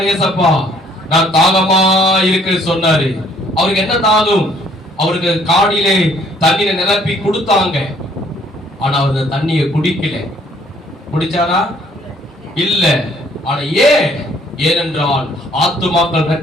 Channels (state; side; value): normal; both; correlation 0.62